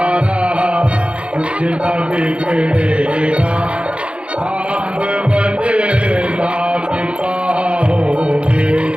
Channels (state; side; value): late; left; 0.059 ms